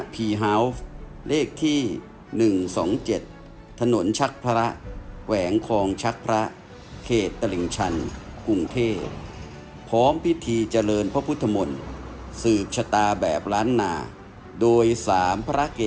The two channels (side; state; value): both; identical; correlation 1.00